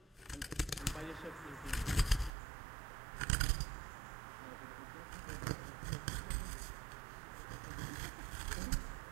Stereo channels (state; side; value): drops out; left; at 2.3 s